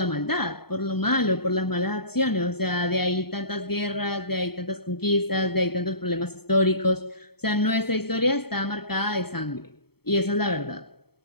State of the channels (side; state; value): right; late; 0.96 ms